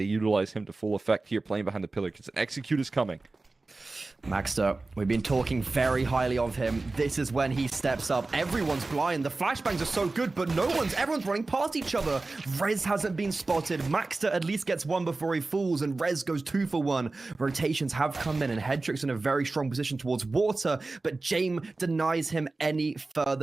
utilize him to full effect here, playing behind the pillar? Because an execute is coming. Maxter, we've been talking very highly of him. This is when he steps up. Everyone's blind. The flashbangs are so good, but everyone's running past each other. Rez hasn't been spotted. Maxter at least gets one before he falls, and Rez goes 2 for 1. Rotations have come in, and Hedrick's in a very strong position towards Water, but James denies him any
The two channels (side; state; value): left; quieter; 3.4 dB